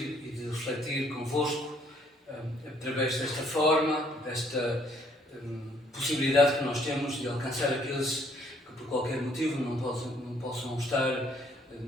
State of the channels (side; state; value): both; normal; correlation 0.65